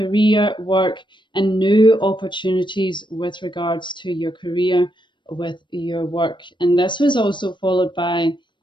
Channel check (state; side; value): late; right; 0.23 ms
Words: work, and new opportunities with regards to your career, with your work. And this was also followed by